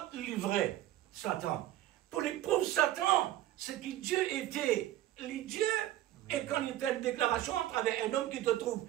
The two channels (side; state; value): left; quieter; 13.8 dB